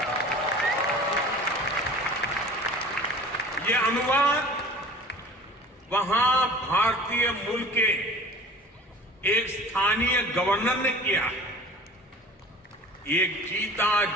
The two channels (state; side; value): normal; both; correlation 0.42